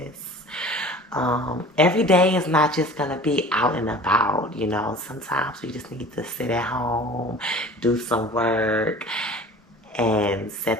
Every day is not just gonna be out and about, you know. Sometimes we just need to sit at home, do some work, and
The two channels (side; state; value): both; normal; correlation 0.43